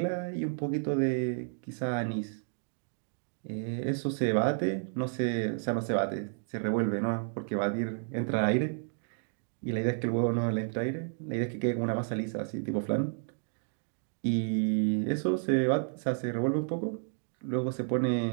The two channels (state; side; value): silent; left; 56 dB below the other